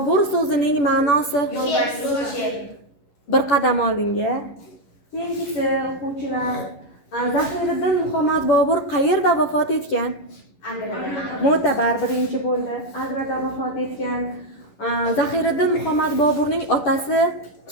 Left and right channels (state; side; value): late; right; 11 ms